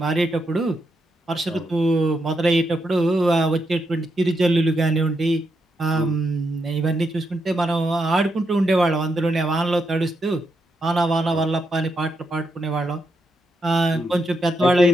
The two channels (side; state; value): both; normal; correlation 0.82